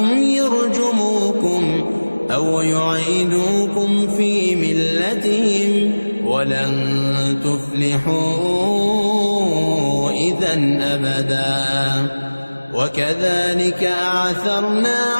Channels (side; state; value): both; inverted; correlation -1.00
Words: يرجموكم أو يعيدوكم في ملتهم ولن تفلحوا إذن أبدا وكذلك أعثرنا